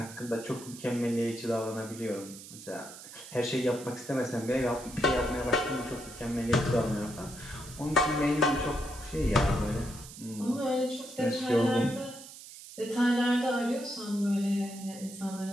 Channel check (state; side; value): noise; right; hiss, 15 dB below the sound